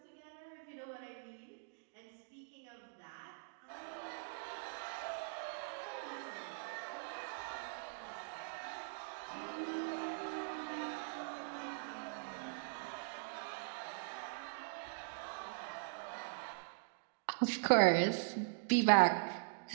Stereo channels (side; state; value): left; silent; digital silence